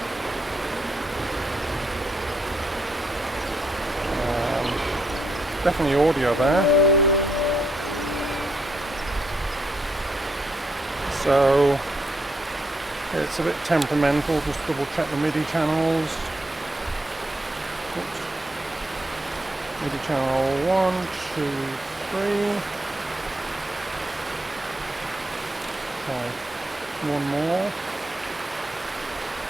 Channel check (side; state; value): both; normal; correlation 0.77